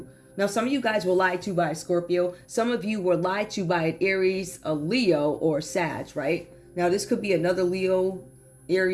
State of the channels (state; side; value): identical; both; correlation 1.00